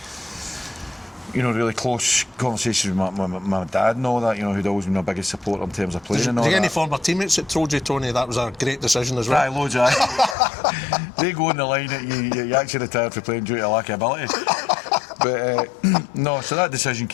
you know, really close conversations with my dad and all that, you know, who'd always been my biggest supporter in terms of playing and all that. Any former teammates that told you, Tony, that was a great decision as well? Aye, loads of They go on the line that you actually retired for playing due to lack of ability. But no, so that decision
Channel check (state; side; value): drops out; right; at 10.4 s